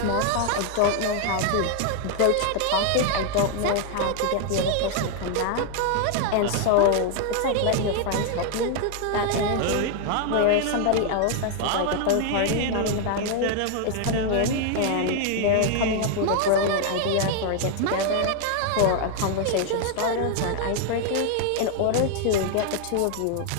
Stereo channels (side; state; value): both; different; correlation 0.00